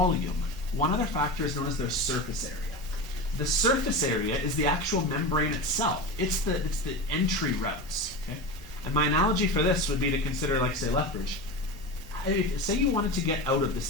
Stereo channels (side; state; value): both; normal; correlation 0.25